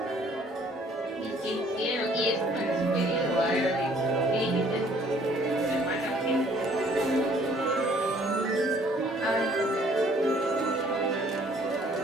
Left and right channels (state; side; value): normal; both; correlation 0.59